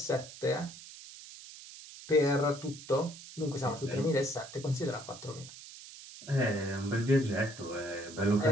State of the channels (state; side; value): noise; right; hiss, 15 dB below the sound